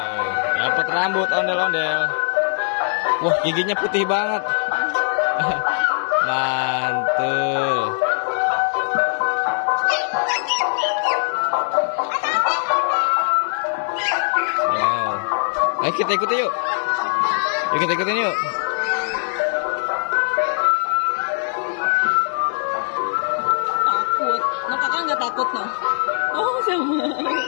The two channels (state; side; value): silent; right; 65 dB below the other